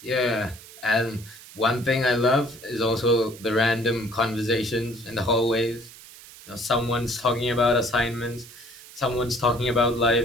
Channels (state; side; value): noise; right; hiss, 19 dB below the sound